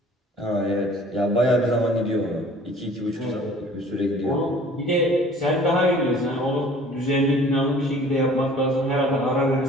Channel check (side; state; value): both; normal; correlation 0.50